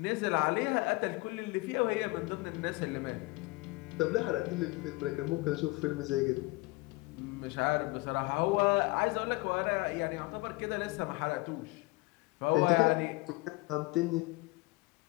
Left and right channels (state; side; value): quieter; right; 23.3 dB